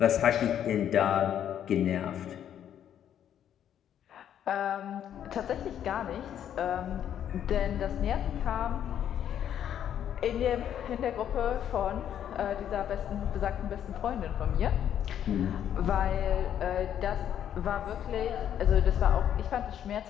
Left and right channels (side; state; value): right; quieter; 9.9 dB